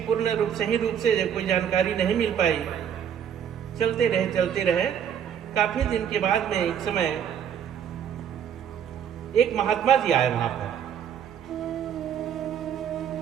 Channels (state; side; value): quieter; left; 8.8 dB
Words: रूप सही रूप से कोई जानकारी नहीं मिल पाई। चलते रहे। काफी दिन के बाद में एक समय एक महात्मा जी आए वहां पर।